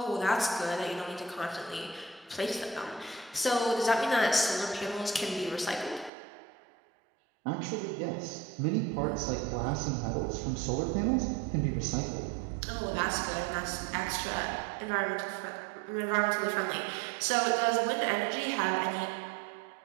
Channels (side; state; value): left; drops out; at 6.1 s